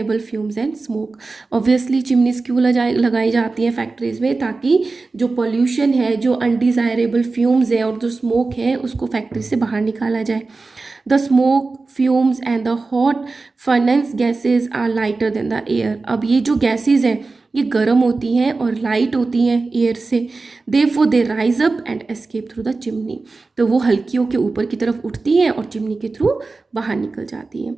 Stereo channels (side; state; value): left; quieter; 3.8 dB